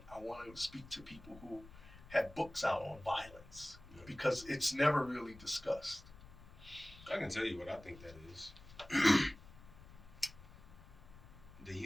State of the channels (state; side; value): noise; left; rumble, 19 dB below the sound